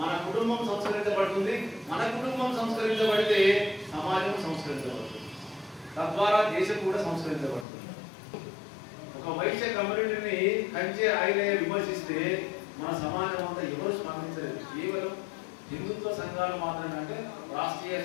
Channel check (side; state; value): right; drops out; at 7.7 s